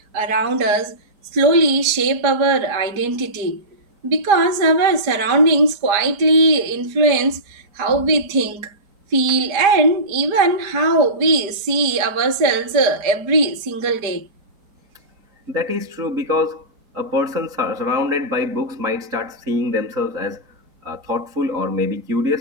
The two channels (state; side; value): late; left; 5.0 ms